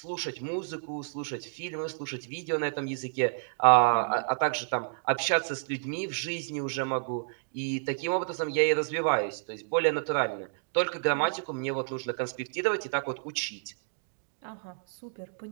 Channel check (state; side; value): silent; left; digital silence